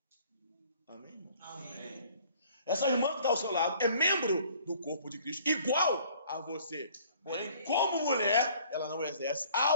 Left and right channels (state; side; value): inverted; both; correlation -0.55